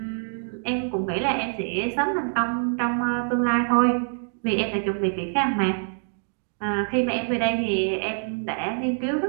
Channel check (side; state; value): left; silent; digital silence